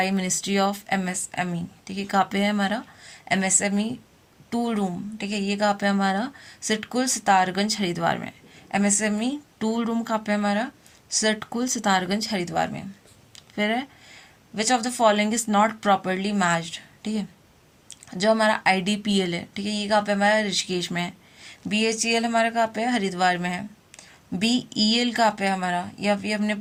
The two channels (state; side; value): identical; both; correlation 1.00